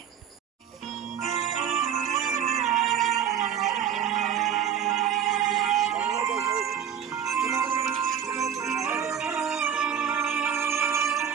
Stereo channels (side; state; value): left; quieter; 8.7 dB